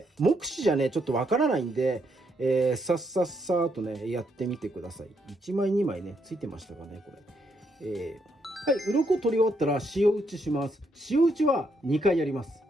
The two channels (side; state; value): both; normal; correlation 0.76